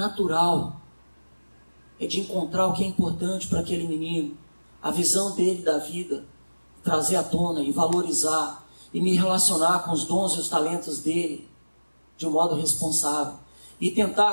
É de encontrar o que é importante para aquele menino. A visão dele da vida. Trazer à tona e valorizar. E me relacionar com os dons e os talentos dele. De um modo responsável. E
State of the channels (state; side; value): inverted; both; correlation -1.00